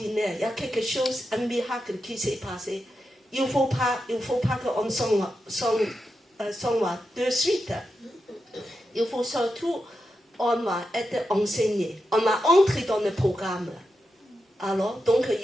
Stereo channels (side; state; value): both; normal; correlation 0.88